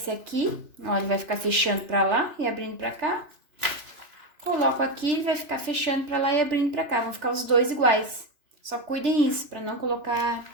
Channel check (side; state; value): left; late; 3.0 ms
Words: aqui, ó, ele vai ficar fechando para lá e abrindo para cá. Coloco aqui, ele vai ficar fechando para lá e abrindo para cá. Vão ficar os dois iguais. Só cuidem isso, para não